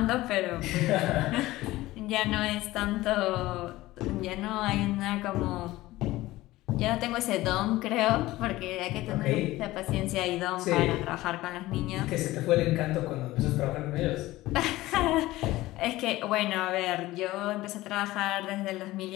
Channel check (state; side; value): quieter; right; 17.6 dB